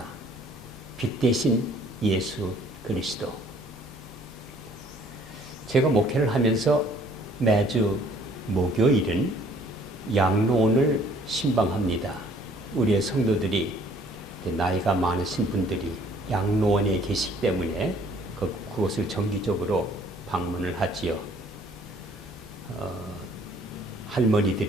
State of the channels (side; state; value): both; normal; correlation 0.58